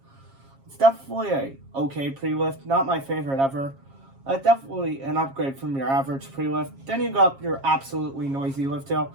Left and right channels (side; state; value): left; late; 7.4 ms